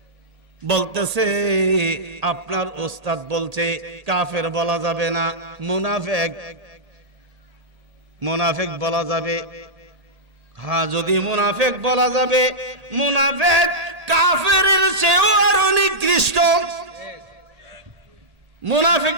বলতেছে আপনার ওস্তাদ বলছে কাফের বলা যাবে না, মুনাফিক বলা যাবে। হ্যাঁ, যদি মুনাফিক বলা যাবে, মুনাফিক কাফেরের চেয়েও আরো নিকৃষ্ট।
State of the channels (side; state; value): left; late; 1.8 ms